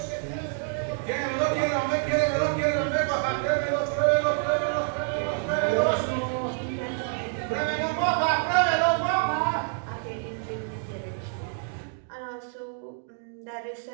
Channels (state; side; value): silent; left; digital silence